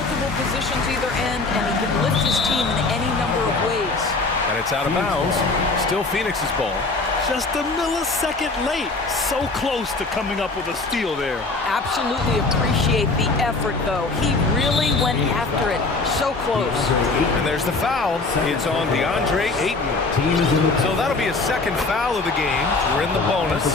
positions either end, and he can lift his team in any number of ways. And it's out of bounds. Still Phoenix's ball. Just a millisecond late. So close to coming up with a steal there. Absolutely appreciate the effort, though. He really went after it. So close. And there's the foul. It's on DeAndre Ayton. So that'll be a second foul of the game. We're in the bonus.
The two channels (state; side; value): quieter; right; 3.6 dB